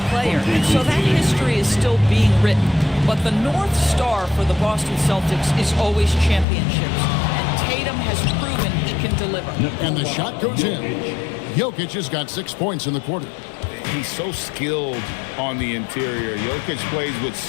player, and so that history is still being written. But the North Star for the Boston Celtics is always championships, and Tatum has proven he can deliver. And the shot goes in. Jokic has got 6 points in the quarter. He's so skilled on the interior. Jokic plays with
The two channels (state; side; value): drops out; right; at 6.5 s